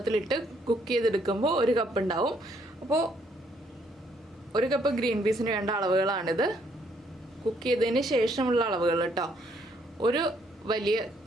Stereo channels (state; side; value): normal; both; correlation 0.69